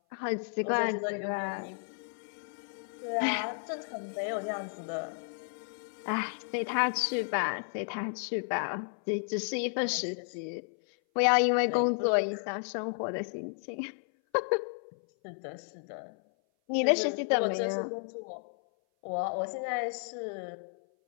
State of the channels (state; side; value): silent; right; 56 dB below the other